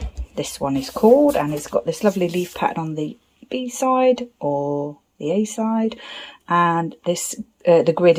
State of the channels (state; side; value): identical; both; correlation 1.00